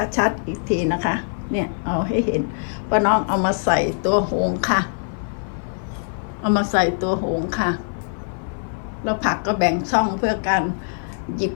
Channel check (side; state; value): right; silent; 56 dB below the other